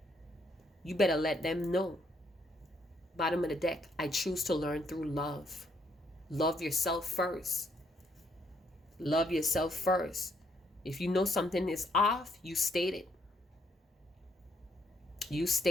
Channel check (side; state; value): both; normal; correlation 0.72